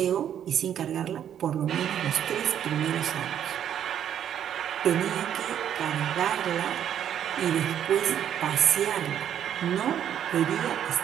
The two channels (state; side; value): quieter; left; 9.8 dB